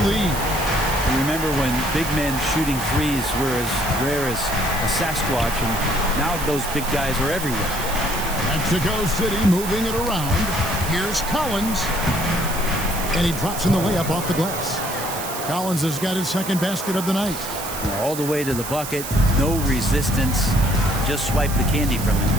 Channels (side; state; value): right; noise; hiss, 8 dB below the sound